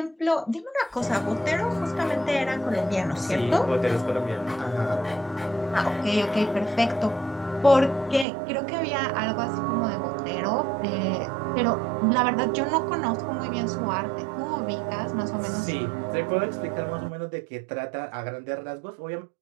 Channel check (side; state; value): left; drops out; at 8.2 s